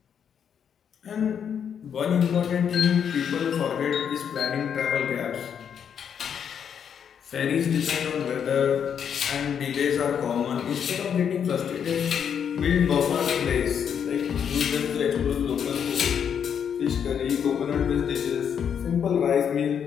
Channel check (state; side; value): quieter; right; 7.9 dB